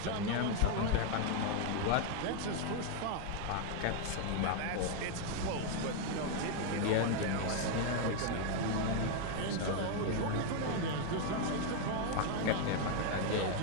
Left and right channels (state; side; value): different; both; correlation 0.01